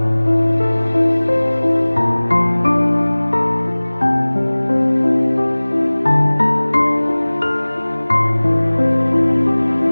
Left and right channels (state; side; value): inverted; both; correlation -1.00